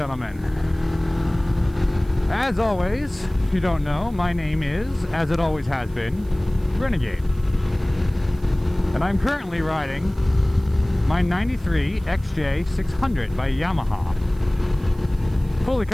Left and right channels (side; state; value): right; noise; hiss, 28 dB below the sound